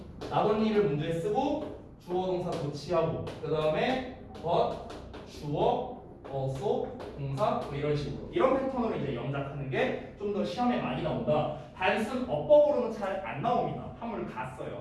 나돈니를 문제에 쓰고 주어 동사 도치하고 그 다음에 but, 주어, also, 동사 뭐 이런 식으로 이런 패턴으로 이제 영작하는 게 좀 더 시험에 많이 나온다. 단순 어법으로는 잘 안 나옵니다. 한물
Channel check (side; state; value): both; identical; correlation 1.00